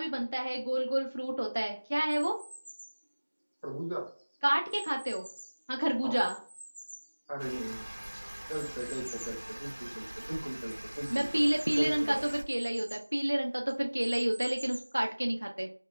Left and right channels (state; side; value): inverted; both; correlation -1.00